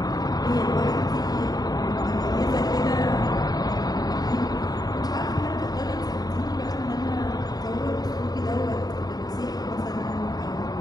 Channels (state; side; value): late; right; 0.19 ms